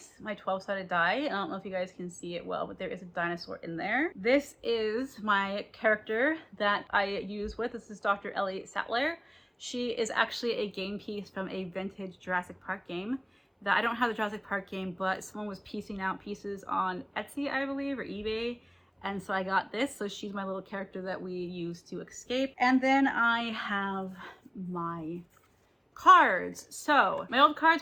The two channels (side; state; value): both; identical; correlation 1.00